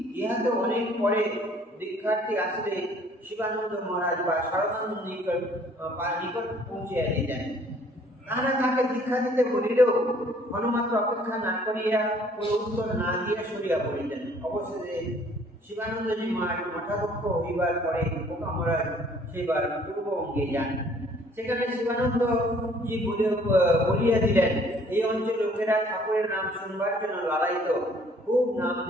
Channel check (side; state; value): both; normal; correlation 0.58